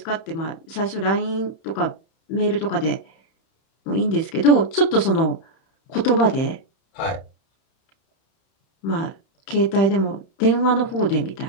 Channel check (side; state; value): right; late; 31 ms